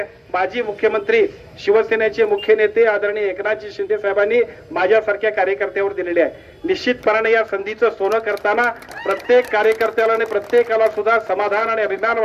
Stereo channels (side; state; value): both; identical; correlation 1.00